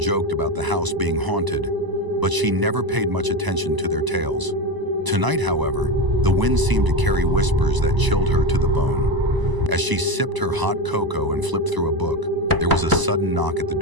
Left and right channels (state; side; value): late; left; 1.0 ms